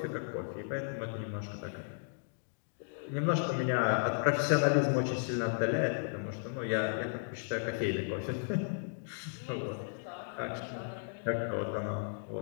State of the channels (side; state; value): right; silent; digital silence